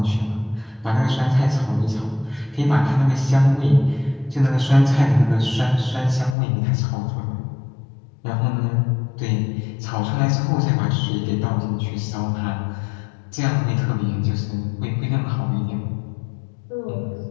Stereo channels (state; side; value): drops out; right; at 6.4 s